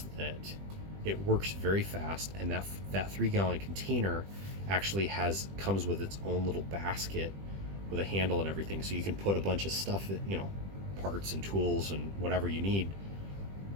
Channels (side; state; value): left; late; 20 ms